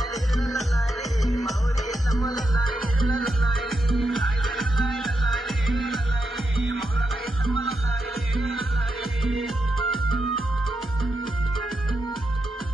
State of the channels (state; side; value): normal; both; correlation 0.85